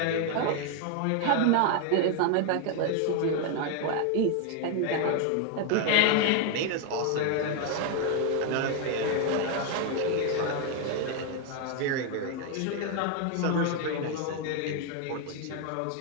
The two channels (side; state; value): both; different; correlation 0.01